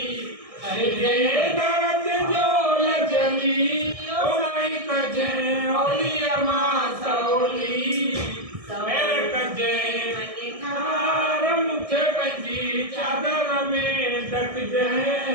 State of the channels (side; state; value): left; late; 1.6 ms